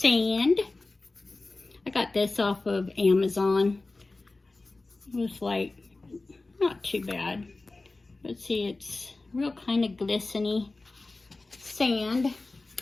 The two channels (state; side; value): quieter; right; 3.3 dB